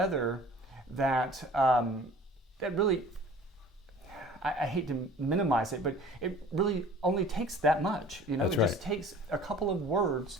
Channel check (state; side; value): normal; both; correlation 0.47